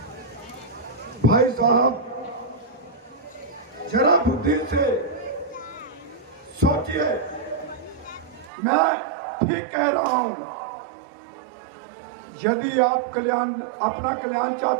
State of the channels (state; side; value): drops out; left; at 8.5 s